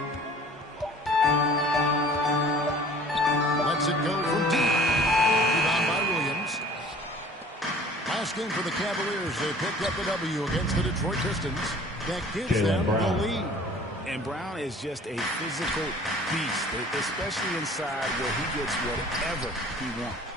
Lets it go from deep. Rebound by Williams. Last game for the Cavaliers. They picked up the W against the Detroit Pistons. That gives them the lead. And Brown is just a physical beast, especially inside where he gets whatever he wants.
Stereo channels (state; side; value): normal; both; correlation 0.49